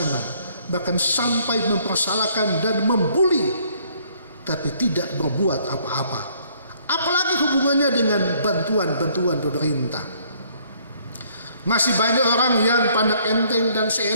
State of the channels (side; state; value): both; inverted; correlation -0.63